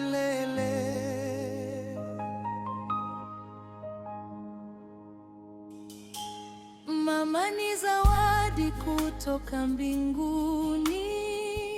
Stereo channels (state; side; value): identical; both; correlation 1.00